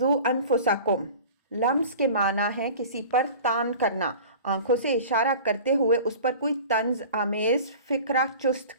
أَنفُسَكُمْ، لمز کے معنی ہے کسی پر تان کرنا، آنکھوں سے اشارہ کرتے ہوئے اس پر کوئی طنز آمیز فکرہ چست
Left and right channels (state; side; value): inverted; both; correlation -0.40